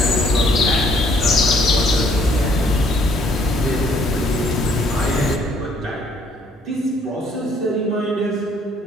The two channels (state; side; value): normal; both; correlation 0.64